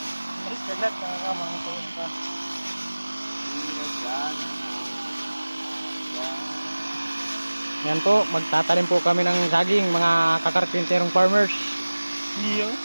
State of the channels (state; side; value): inverted; both; correlation -1.00